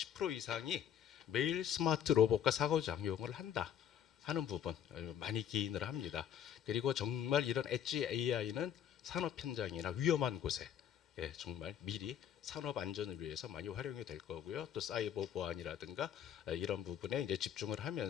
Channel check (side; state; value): right; quieter; 9.5 dB